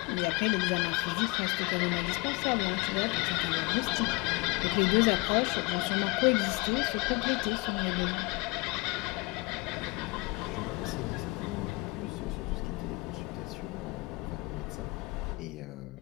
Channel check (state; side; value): quieter; right; 26.1 dB